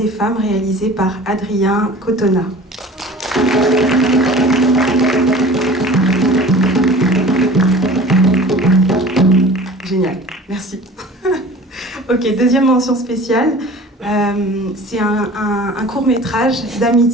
femmes, réalisé par Adrien Cotona. Génial, merci. Ok, deuxième mention spéciale, c'est un court-métrage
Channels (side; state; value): both; normal; correlation 0.43